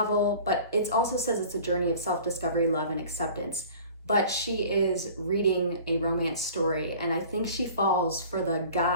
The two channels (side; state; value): both; inverted; correlation -0.45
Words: but it also says it's a journey of self-discovery, love, and acceptance. But she is reading a romance story, and I think she falls for the